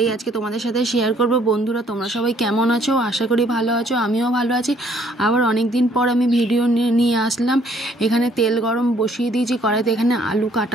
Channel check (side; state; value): both; normal; correlation 0.63